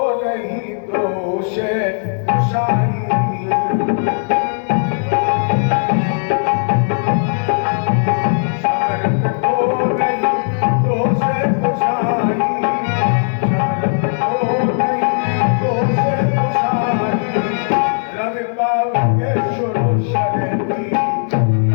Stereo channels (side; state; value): right; silent; digital silence